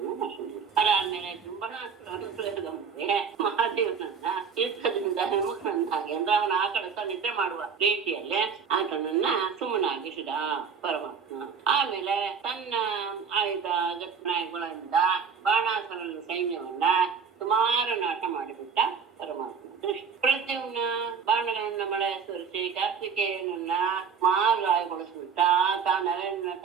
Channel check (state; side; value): quieter; left; 6.3 dB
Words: ಅದಾದ್ಮೇಲೆ ಜುಂಬನಾಸ್ತ್ರವನ್ನು ಪ್ರಯೋಗ ಮಾಡಿ ಮಹಾದೇವನನ್ನ ಯುದ್ಧದಿಂದ ವಿಮುಖನನ್ನಾಗಿ ಅಂದ್ರೆ ಅವನ ಆ ಕಡೆ ನಿದ್ರೆ ಮಾಡುವ ರೀತಿಯಲ್ಲೇ ಆತನನ್ನ ಸುಮ್ಮನಾಗಿಸಿದ ಪರಮಾತ್ಮ. ಆಮೇಲೆ ತನ್ನ ಆಯುಧ ಗತ್ನಾಯಗಳಿಂದ ಬಾಣಾಸುರನ ಸೈನ್ಯವನ್ನ ಸುಮಾರು ನಾಶ ಮಾಡಿಬಿಟ್ಟ ಪರಮಾತ್ಮ. ಪ್ರದ್ಯುಮ್ನ ಬಾಣಗಳನ್ನ ಮಳೆ ಸುರಿಸಿ ಕಾರ್ತಿಕೇಯನನ್ನ ಮಾಗಾಯಗೊಳಿಸ್ಬಿಟ್ಟ.